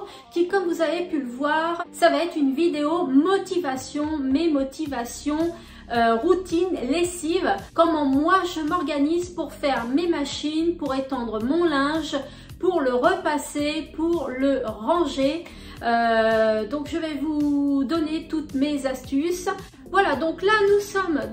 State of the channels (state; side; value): identical; both; correlation 1.00